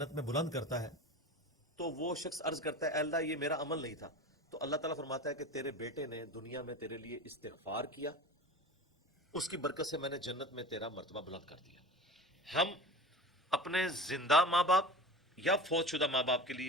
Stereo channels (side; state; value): both; normal; correlation 0.33